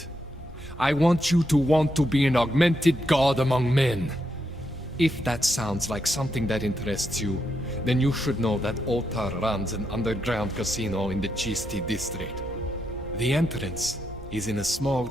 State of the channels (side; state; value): both; normal; correlation 0.81